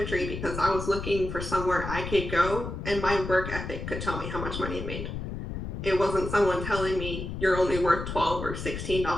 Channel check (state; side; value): noise; left; rumble, 6 dB below the sound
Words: because I was looking for somewhere I could go and my work ethic could tell me how much money I made. It wasn't someone telling me you're only worth $12 or